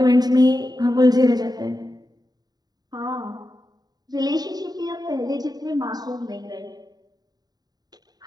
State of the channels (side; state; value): left; late; 0.19 ms